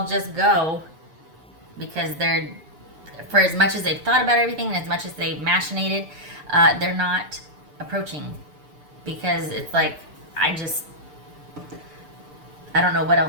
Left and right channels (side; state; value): left; late; 6.8 ms